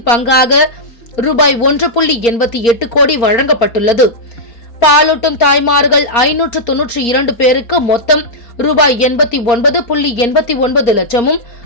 பங்காக ரூபாய் 1.88 கோடி வழங்கப்பட்டுள்ளது. பாலூட்டும் தாய்மார்கள் 592 பேருக்கு மொத்தம் ரூபாய் 89.89 லட்சமும்,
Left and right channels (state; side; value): late; right; 4.3 ms